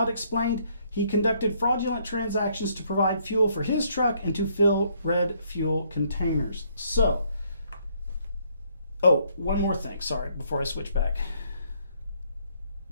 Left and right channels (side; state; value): both; inverted; correlation -0.68